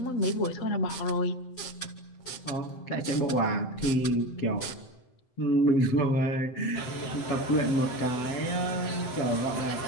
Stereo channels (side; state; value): right; late; 7.8 ms